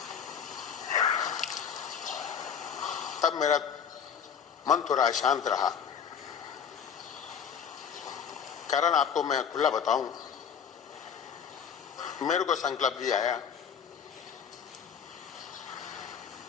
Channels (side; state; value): right; quieter; 7.6 dB